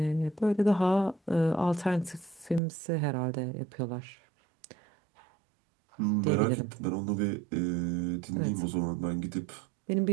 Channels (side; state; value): left; drops out; at 2.6 s